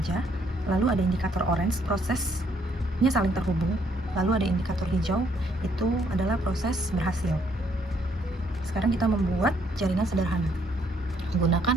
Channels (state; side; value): normal; both; correlation 0.69